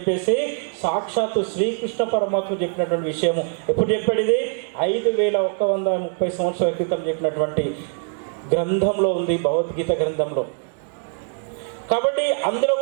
సాక్షాత్తు శ్రీకృష్ణ పరమాత్మ చెప్పినటువంటి విషయము. ఎప్పుడు చెప్పాడు ఇది? 5130 సంవత్సరాల క్రితం చెప్పినటువంటి గ్రంథంలో ఉంది, భగవద్గీత గ్రంథంలో. కాబట్టి అందులో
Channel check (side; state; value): left; silent; 58 dB below the other